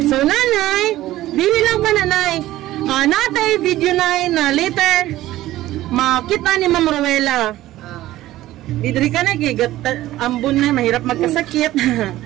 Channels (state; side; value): quieter; left; 15.4 dB